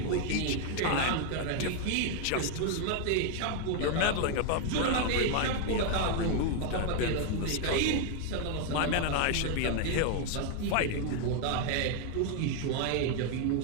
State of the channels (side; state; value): both; different; correlation 0.01